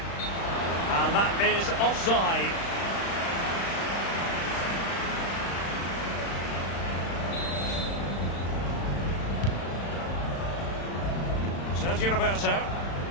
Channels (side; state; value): right; late; 35 ms